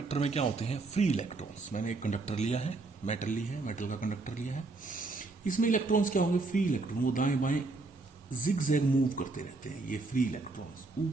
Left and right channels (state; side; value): quieter; left; 3.5 dB